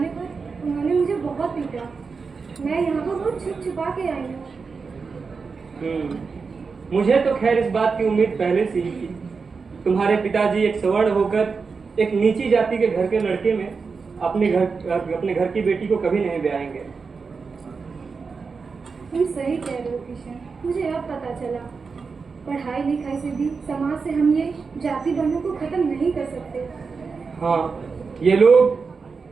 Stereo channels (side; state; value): left; quieter; 4.9 dB